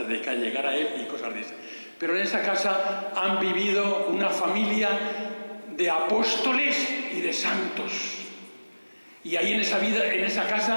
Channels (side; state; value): both; inverted; correlation -1.00